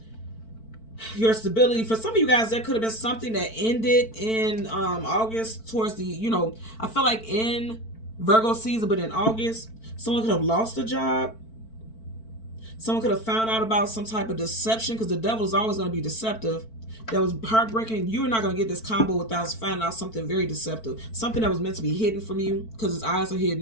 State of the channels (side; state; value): right; late; 4.5 ms